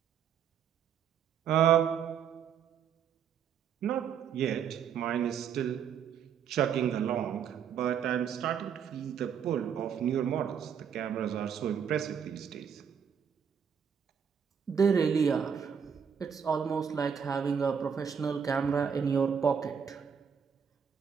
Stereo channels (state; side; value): quieter; left; 7.6 dB